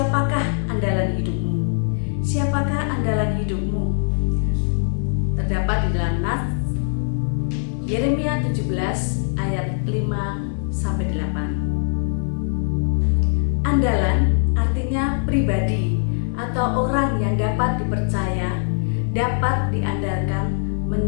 andalan hidupmu? Siapakah andalan hidupmu? Terdapat di dalam nas Yeremia 17 ayat 5-8. Andalan artinya pribadi atau orang yang dapat dipercaya, dapat diandalkan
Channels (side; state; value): right; silent; digital silence